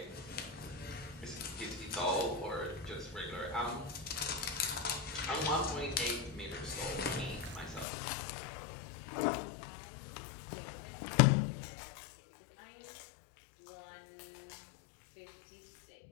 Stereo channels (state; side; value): drops out; right; at 7.9 s